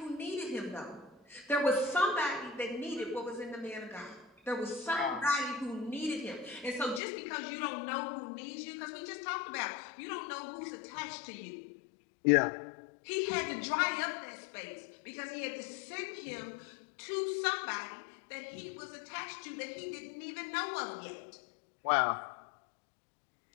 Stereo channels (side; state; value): right; drops out; at 7.0 s